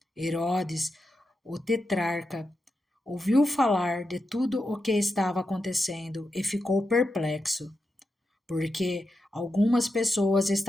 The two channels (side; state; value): both; normal; correlation 0.88